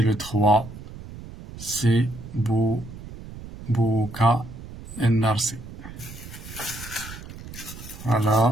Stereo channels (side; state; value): right; noise; rumble, 14 dB below the sound